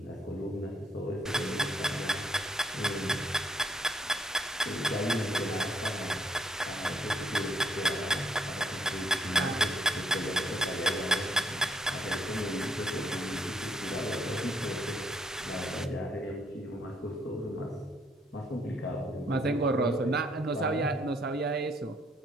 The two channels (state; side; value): normal; both; correlation 0.69